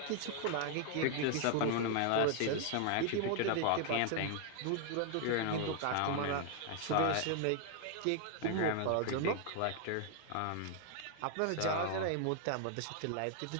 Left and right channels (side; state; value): both; different; correlation 0.00